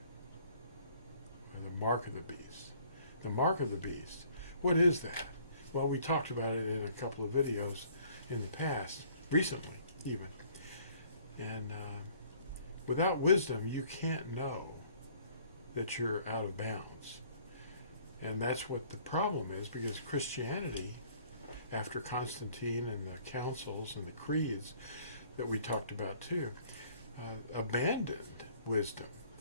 or the mark of the beast. The mark of the beast, what is that? Well, we talked about it in a couple of videos in the past, recently even. And without wisdom, you can't know that you're out of bounds. And that's what the problem is, because Christianity, after Constantine and the councils and the creeds that we talked about too, abandoned wisdom.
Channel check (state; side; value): inverted; both; correlation -0.58